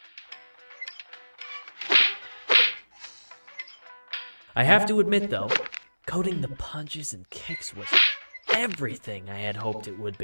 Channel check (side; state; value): both; inverted; correlation -1.00